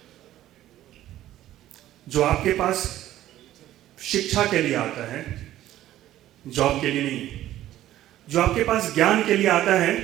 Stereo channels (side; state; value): left; quieter; 13.5 dB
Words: जो आपके पास शिक्षा के लिए आता है, जॉब के लिए नहीं। जो आपके पास ज्ञान के लिए आता है,